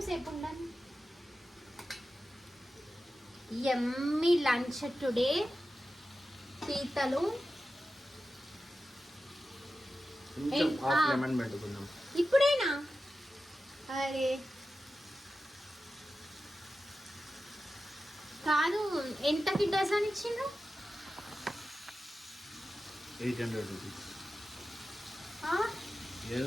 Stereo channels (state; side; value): normal; both; correlation 0.93